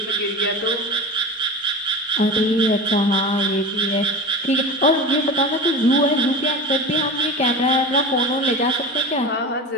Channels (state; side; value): normal; both; correlation 0.29